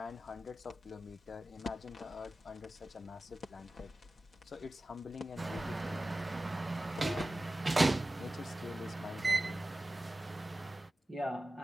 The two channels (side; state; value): both; normal; correlation 0.95